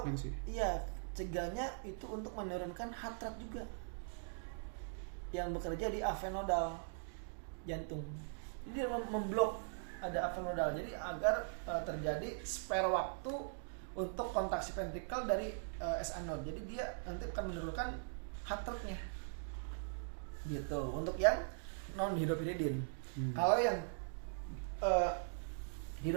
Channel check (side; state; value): left; silent; digital silence